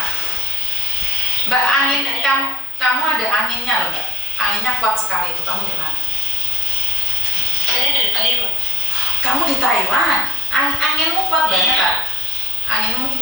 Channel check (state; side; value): normal; both; correlation 0.67